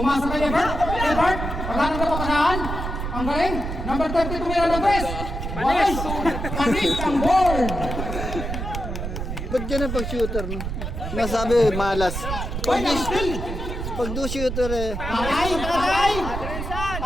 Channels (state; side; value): noise; right; rumble, 4 dB below the sound